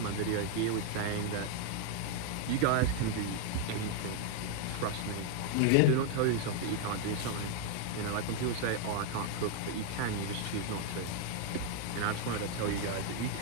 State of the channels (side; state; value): both; different; correlation 0.00